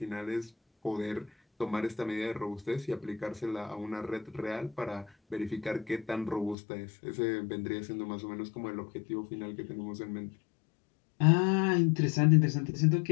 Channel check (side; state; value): right; drops out; at 6.6 s